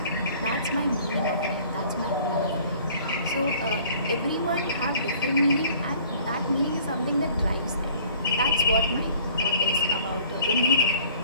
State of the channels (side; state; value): both; inverted; correlation -0.53